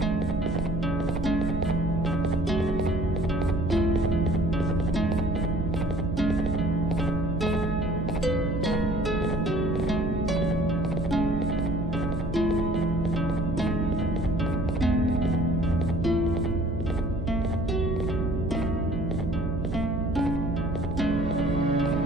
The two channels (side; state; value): right; noise; hum, 6 dB below the sound